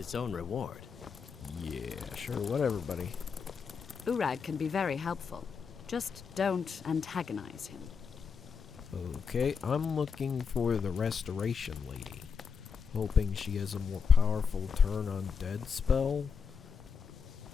own reward. Yeah, sure, whatever, buddy. Urag can be very helpful. Just don't antagonize him. Okay, I'm looking for the Restoration Lady. Hoping she has a more powerful turn on dead spell.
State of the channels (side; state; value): right; quieter; 6.0 dB